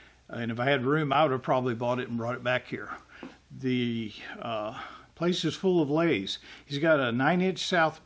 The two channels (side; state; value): both; identical; correlation 1.00